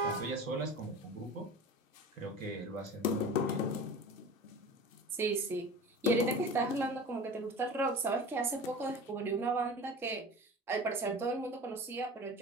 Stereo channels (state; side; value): normal; both; correlation 0.36